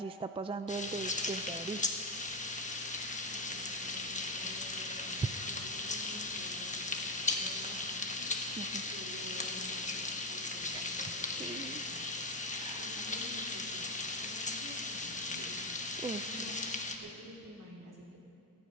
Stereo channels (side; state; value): both; normal; correlation 0.09